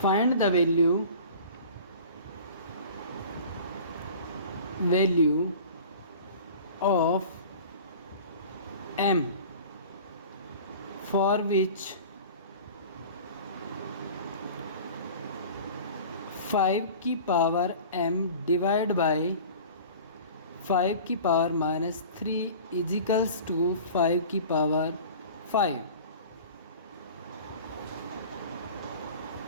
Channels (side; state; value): both; inverted; correlation -0.41